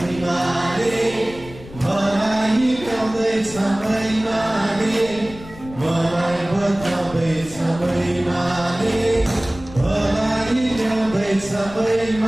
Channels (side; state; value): left; noise; rumble, 17 dB below the sound